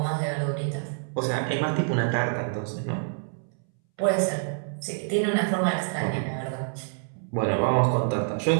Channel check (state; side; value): silent; left; 60 dB below the other